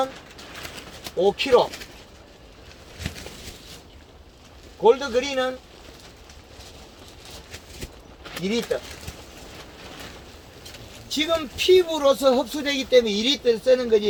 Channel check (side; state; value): both; identical; correlation 1.00